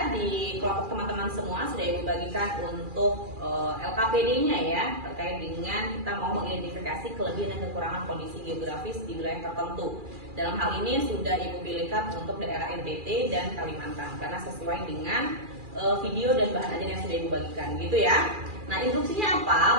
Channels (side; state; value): left; late; 2.4 ms